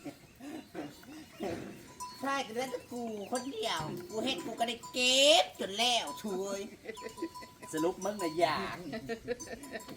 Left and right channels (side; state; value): both; identical; correlation 1.00